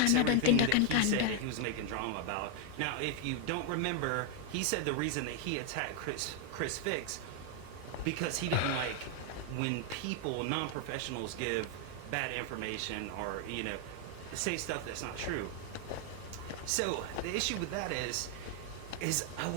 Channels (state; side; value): different; both; correlation 0.00